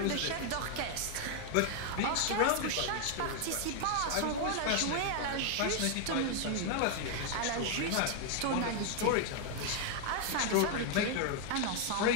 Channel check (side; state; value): both; different; correlation 0.00